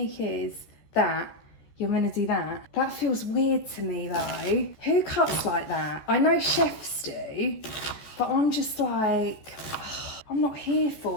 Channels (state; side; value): late; right; 14 ms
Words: is that you're gonna do that. That feels weird to me though. Who cuts like that? I know chefs do, but I'm just like, I'm not here